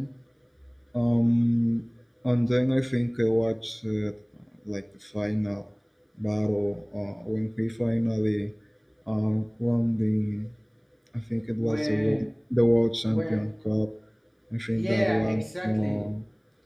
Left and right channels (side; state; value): both; identical; correlation 1.00